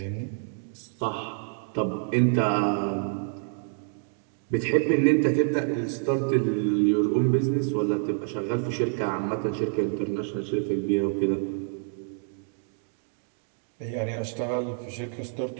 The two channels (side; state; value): left; silent; 58 dB below the other